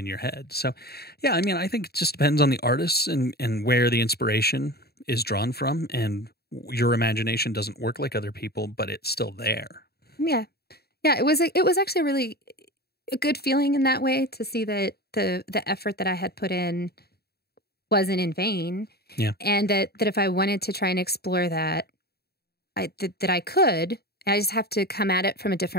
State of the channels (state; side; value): late; right; 0.46 ms